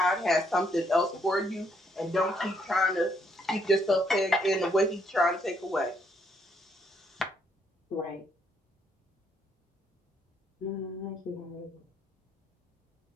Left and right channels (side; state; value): both; normal; correlation 0.72